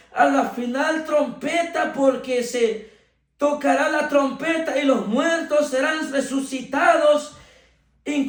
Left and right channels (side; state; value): both; identical; correlation 1.00